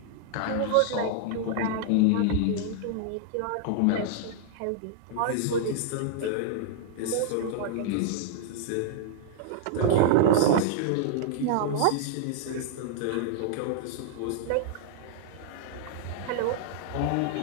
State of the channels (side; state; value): both; different; correlation -0.01